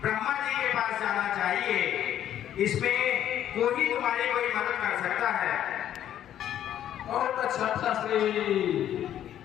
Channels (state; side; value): quieter; right; 11.0 dB